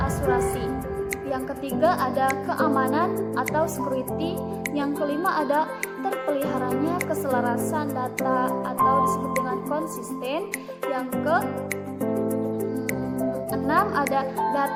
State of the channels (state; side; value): identical; both; correlation 1.00